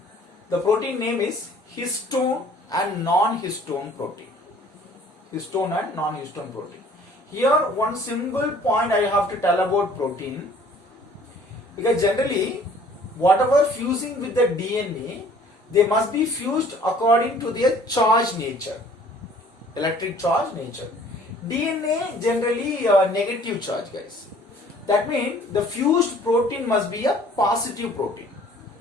The protein name is histone and non-histone protein. Histone and non-histone protein. Here one simple point I have to tell about protein, because generally whatever fusing with the DNA, they must be fused according to their charge nature, electric charge nature. DNA generally negative charge, guys. That means the fused protein must be a positive protein.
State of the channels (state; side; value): normal; both; correlation 0.54